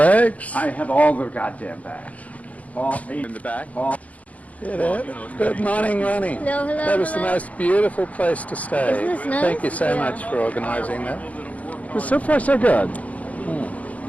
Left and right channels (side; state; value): right; late; 0.069 ms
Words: I have all the goddamn bags. All 8 in the back. All. Get it. Good morning, Ronnie. Hello, hello, That was the hello. most beautiful place to stay. Isn't this nice? Thank you so Yeah. much for organising that. Well, so far so good. Of